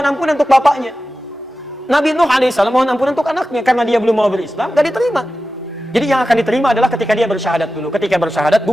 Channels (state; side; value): normal; both; correlation 0.93